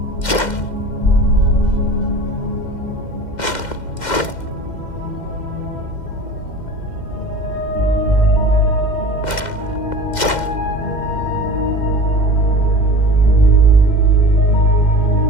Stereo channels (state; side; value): late; right; 2.1 ms